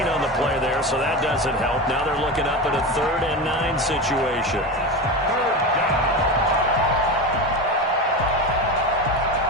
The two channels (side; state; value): both; normal; correlation 0.23